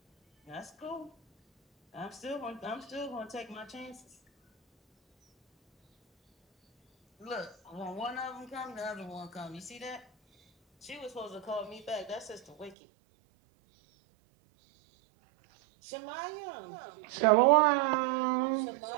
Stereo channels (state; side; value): drops out; left; at 12.8 s